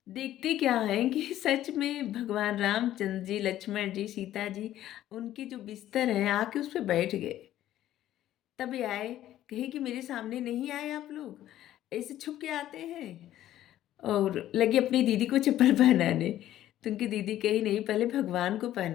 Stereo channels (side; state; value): right; quieter; 12.9 dB